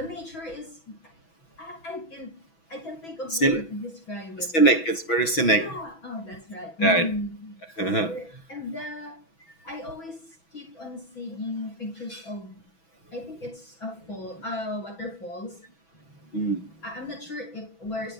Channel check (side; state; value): right; late; 6.1 ms